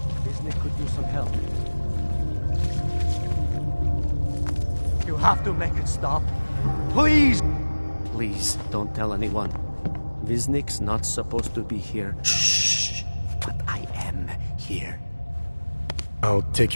Disney could use some help. You have to make it stop. Please! Please, don't tell anyone. Viznik's not supposed to be here. Shh! But I am here. I'll take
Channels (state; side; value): inverted; both; correlation -1.00